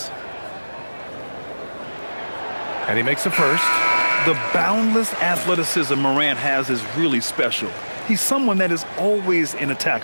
And he makes a first. The boundless athleticism Morant has is really special. He's someone that is always in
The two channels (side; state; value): both; inverted; correlation -1.00